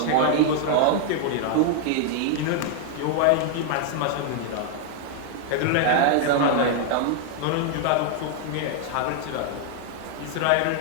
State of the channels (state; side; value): different; both; correlation 0.00